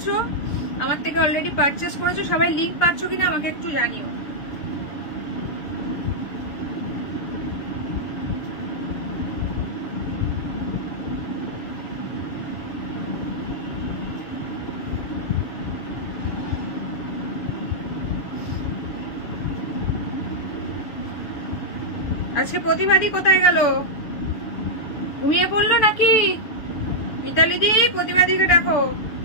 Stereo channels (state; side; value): late; right; 6.9 ms